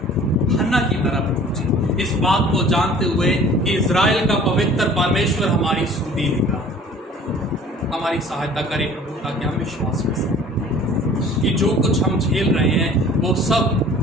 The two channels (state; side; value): normal; both; correlation 0.49